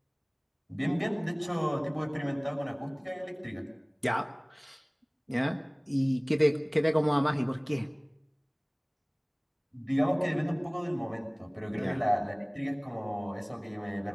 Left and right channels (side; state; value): both; identical; correlation 1.00